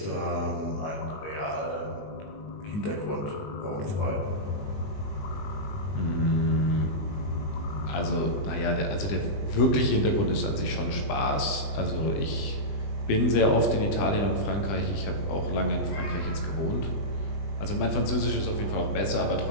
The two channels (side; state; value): right; late; 20 ms